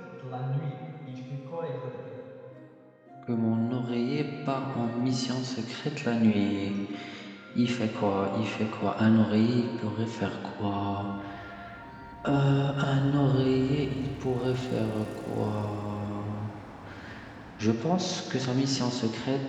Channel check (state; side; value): identical; both; correlation 1.00